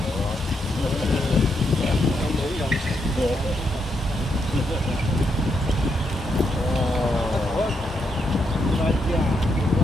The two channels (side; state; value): both; normal; correlation 0.80